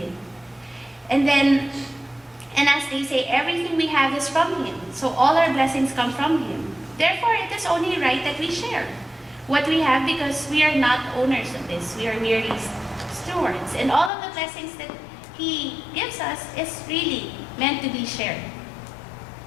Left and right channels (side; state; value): right; drops out; at 14.1 s